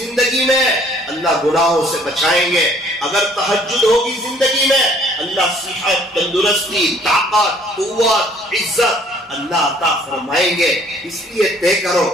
میں اللہ گناہوں سے بچائیں گے. اگر تہجد ہوگی زندگی میں اللہ صحت، تندرستی، طاقت، قوت، عزت اللہ عطا فرمائیں گے. اس لیے طے کرو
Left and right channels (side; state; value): both; normal; correlation 0.59